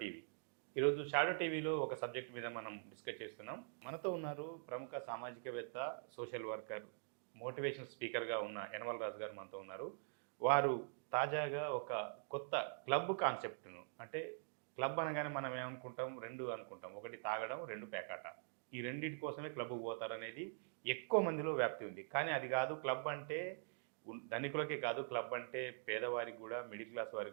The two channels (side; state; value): left; silent; digital silence